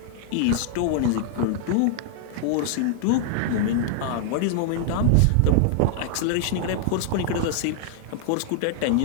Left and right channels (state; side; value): different; both; correlation -0.01